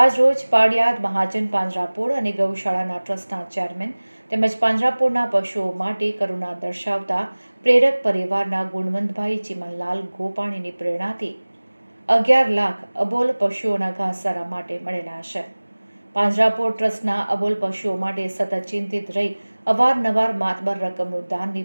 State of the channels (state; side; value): inverted; both; correlation -1.00